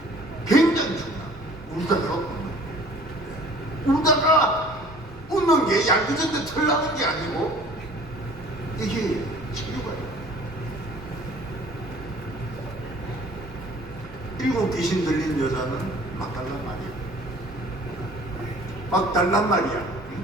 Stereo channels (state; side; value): normal; both; correlation 0.51